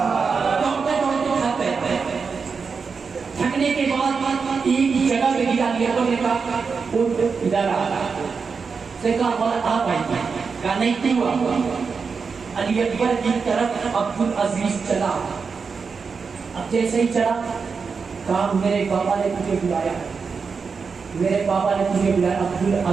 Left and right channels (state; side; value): quieter; left; 5.3 dB